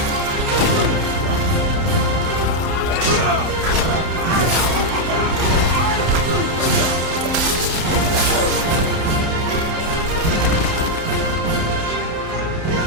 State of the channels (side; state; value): left; late; 30 ms